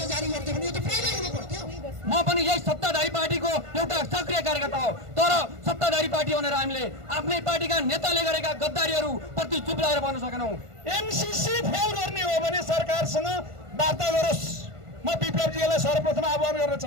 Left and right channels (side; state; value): left; late; 1.5 ms